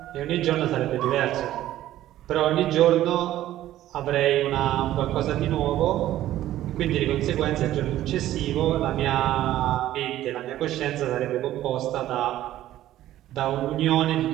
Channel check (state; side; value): quieter; left; 13.6 dB